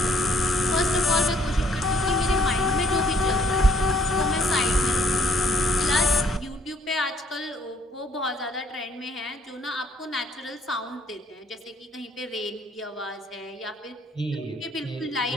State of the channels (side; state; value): both; normal; correlation 0.64